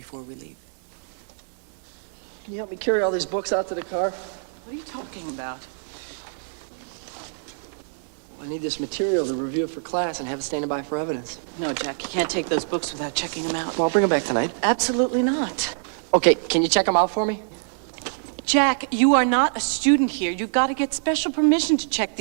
we leave. Can you help me carry all these books out to the car? What are you talking about? I need this material to review it for class and have it standing by for evidence. No, Jack, you can't take those books without checking them out. Well, I'll bring them back tonight. Absolutely not. Okay, can you check them out for me? Jack, you are not a student here. You've got to get special permission to check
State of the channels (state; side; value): silent; left; digital silence